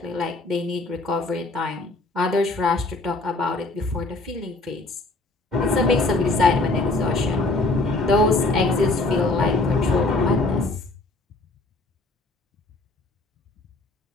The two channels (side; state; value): right; quieter; 3.1 dB